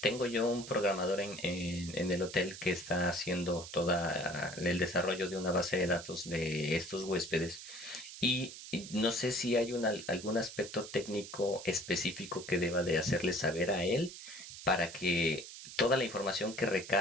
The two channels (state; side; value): noise; right; hiss, 12 dB below the sound